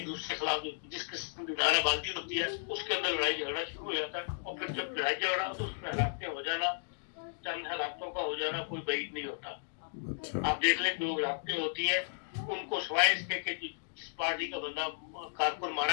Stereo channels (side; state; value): right; silent; digital silence